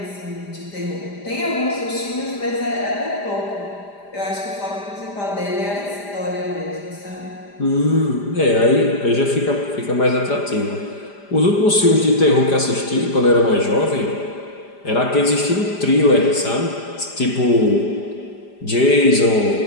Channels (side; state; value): right; late; 5.0 ms